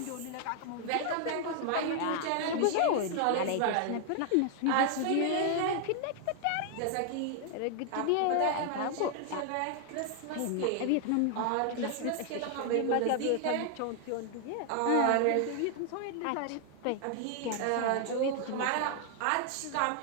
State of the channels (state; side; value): different; both; correlation 0.00